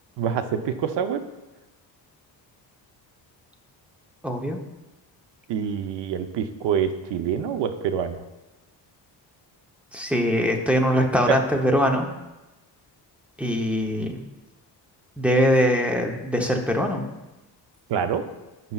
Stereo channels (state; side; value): normal; both; correlation 0.50